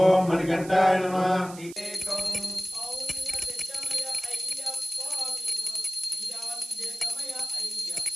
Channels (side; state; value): right; noise; hiss, 17 dB below the sound